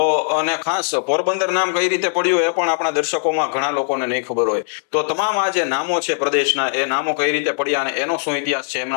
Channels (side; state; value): right; silent; digital silence